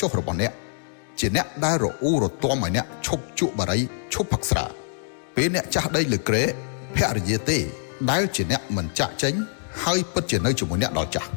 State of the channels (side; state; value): right; silent; digital silence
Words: ចុះរបស់អ្នកជាអ្នកដែលរអ៊ូរទាំឲ្យអ្នកឈប់ជក់បារីឈប់ផឹកស្រាពេលអ្នកចាស់ដីលើក្រែភរិយាទេដែលជាអ្នកមិនចាក់ចេញហើយពិតជានៅជាមួយអ្នកដល់ចាស់